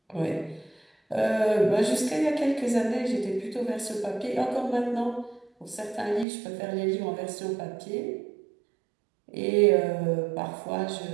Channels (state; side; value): drops out; left; at 6.2 s